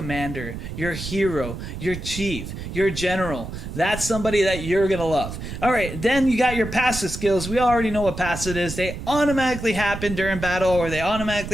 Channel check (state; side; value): noise; right; rumble, 8 dB below the sound